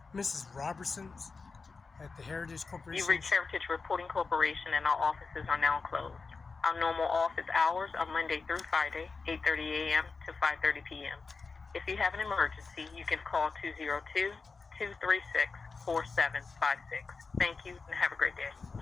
Mrs. Robertson's at the Heritage Corporation. You reached Heritage Reporting Corporation, and our offices are now closed. Our normal office hours are Monday through Friday, 8:30 a.m. to 5:30 p.m. If you have an emergency, you can call 202-236-4756. Thank you, and have a great day.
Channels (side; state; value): right; quieter; 4.5 dB